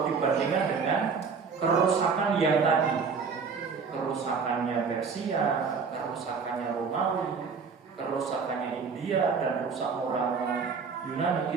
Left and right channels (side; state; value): left; quieter; 5.4 dB